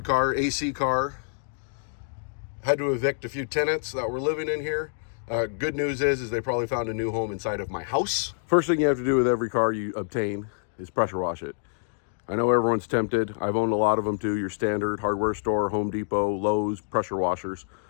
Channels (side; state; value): right; silent; digital silence